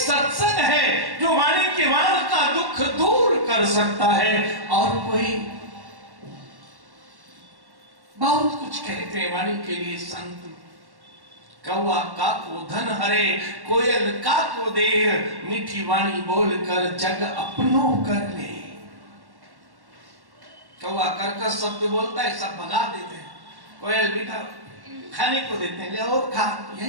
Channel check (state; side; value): late; left; 1.1 ms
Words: है जो वाणी के वाण का दुख दूर कर सकता है। और कोई बहुत कुछ कहते हैं वाणी के लिए संत, कौवा का को धन हरे, कोयल का को देर, मीठी वाणी बोलकर जग अपनो कर ले। कौवा कर्कश शब्द बोलता है, सब भगा देते हैं। कोयल मीठा खाने को देते हैं, ले और खा,